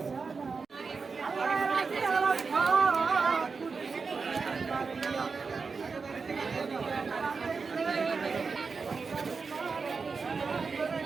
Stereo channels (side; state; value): left; quieter; 4.8 dB